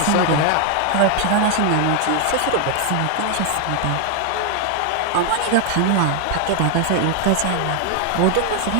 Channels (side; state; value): both; different; correlation 0.00